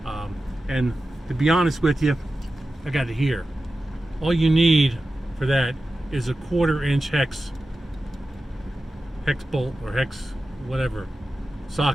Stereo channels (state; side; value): normal; both; correlation 0.93